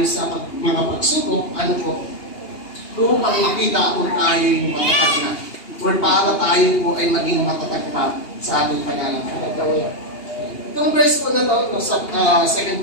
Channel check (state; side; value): late; right; 2.8 ms